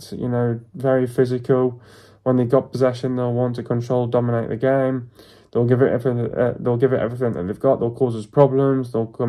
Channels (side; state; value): both; identical; correlation 1.00